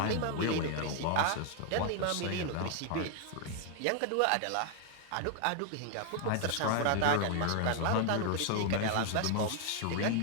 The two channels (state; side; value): different; both; correlation 0.00